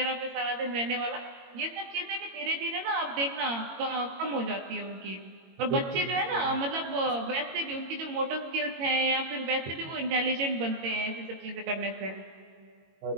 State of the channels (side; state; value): left; late; 22 ms